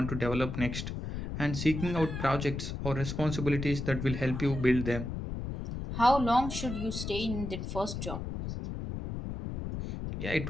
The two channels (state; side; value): noise; left; rumble, 5 dB below the sound